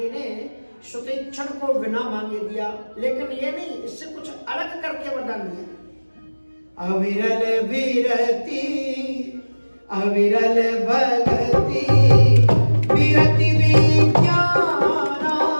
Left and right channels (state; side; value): inverted; both; correlation -1.00